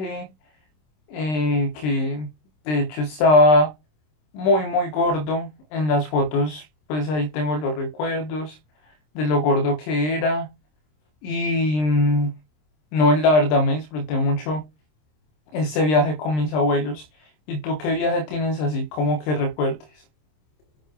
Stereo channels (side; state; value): right; late; 26 ms